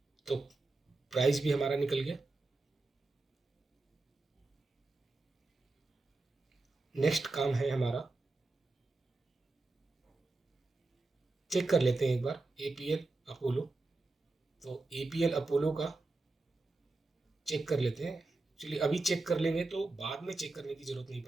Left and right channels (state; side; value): quieter; left; 3.3 dB